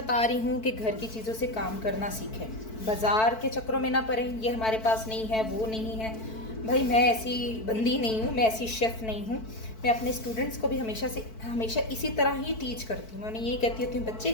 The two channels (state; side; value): late; right; 4.5 ms